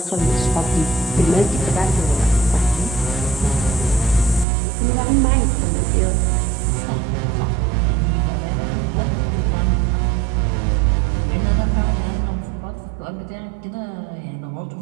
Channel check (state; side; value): drops out; left; at 4.5 s